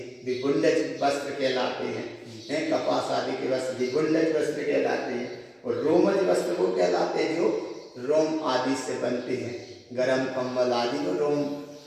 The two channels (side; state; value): both; identical; correlation 1.00